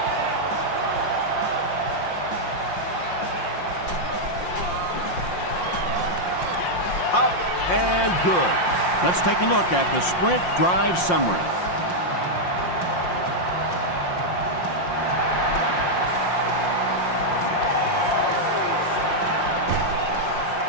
Up and good. Let's take a look at the Sprint drive summary.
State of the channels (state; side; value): late; right; 5.7 ms